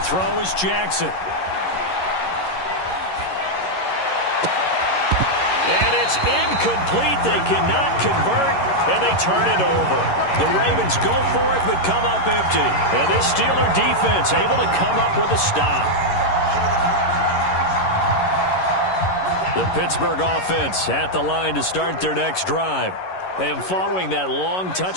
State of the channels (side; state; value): right; late; 11 ms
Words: throw is Jackson. And it's incomplete. They cannot convert, and they turn it over. The Ravens go for it, but come up empty. And this Steeler defense able to come up with a stop. The Pittsburgh offense at the line to start their next drive. And following that long